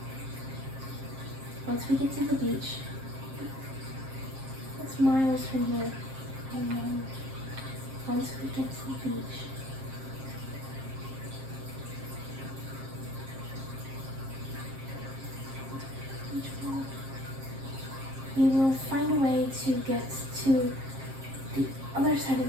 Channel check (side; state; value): left; late; 7.5 ms